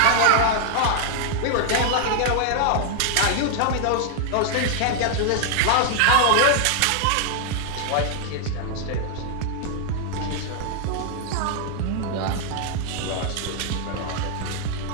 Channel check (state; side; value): different; both; correlation 0.00